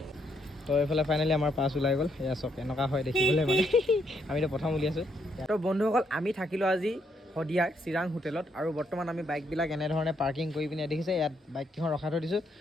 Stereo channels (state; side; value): normal; both; correlation 0.74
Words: তো এইফালে ফাইনেলি আমাৰ পাছ ওলাই গ'ল এয়া চব এনেকুৱা হয় দেখিবলৈ মানে আমিতো প্ৰথম উলিয়াইছোঁ তো বন্ধুসকল আমি থাকিলোঁ আজি শদিয়াৰ চিৰাং হোটেলত আৰু বৰ্তমান আমি বাইকবিলাক এনেধৰণে পাৰ্কিং কৰি পিনে দেখিছে ইয়াত বাইককেইখন ৰখাই থৈ দিছোঁ